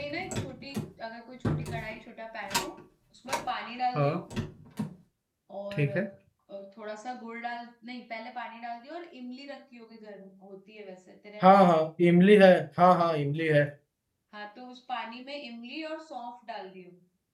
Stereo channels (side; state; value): both; identical; correlation 1.00